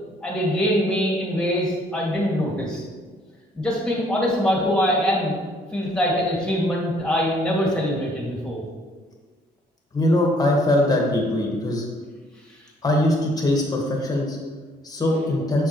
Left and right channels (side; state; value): both; normal; correlation 0.64